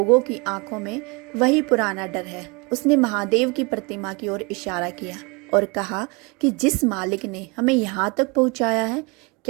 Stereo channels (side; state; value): left; quieter; 28.6 dB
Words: की आंखों में वही पुराना डर है। उसने महादेव की प्रतिमा की ओर इशारा किया और कहा कि जिस मालिक ने हमें यहाँ तक पहुँचाया है,